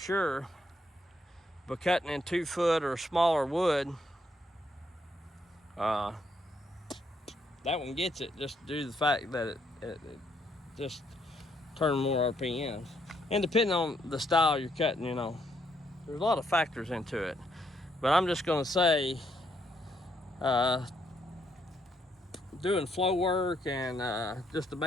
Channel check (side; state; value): both; normal; correlation 0.73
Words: But cutting in 2-foot or smaller wood, that one gets it, just due to the fact that it just turns more RPMs. And depending on the style you're cutting, you know, there's a lot of factors into it. But I'm just going to say, doing flow work and just the